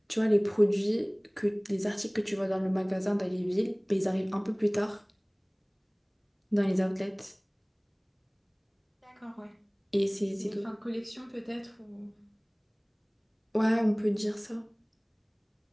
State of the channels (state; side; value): identical; both; correlation 1.00